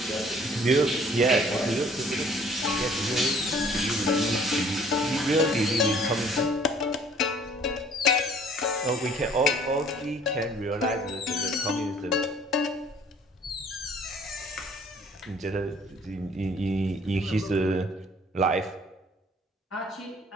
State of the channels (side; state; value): both; normal; correlation 0.56